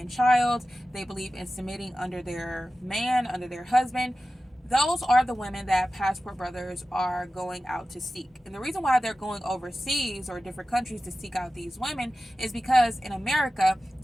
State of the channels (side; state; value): both; normal; correlation 0.95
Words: child, they believe in submitting under their man, under their husband. Those are the women that Passport Brothers are going out to seek. And the reason why they're going overseas or different countries to seek out these women is because in America,